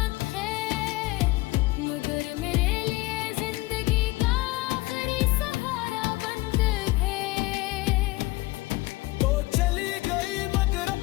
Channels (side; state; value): right; quieter; 21.0 dB